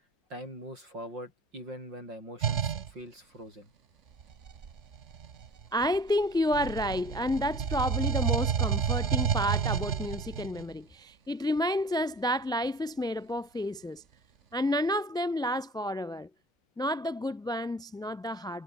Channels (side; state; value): both; normal; correlation 0.41